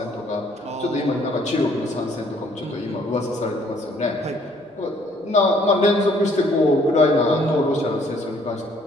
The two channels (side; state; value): both; normal; correlation 0.63